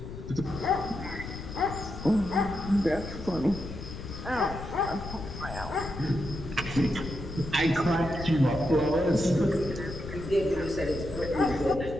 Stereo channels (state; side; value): noise; left; rumble, 10 dB below the sound